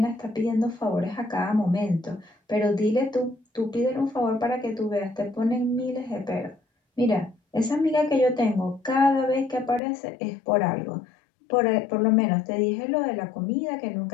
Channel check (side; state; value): right; drops out; at 9.8 s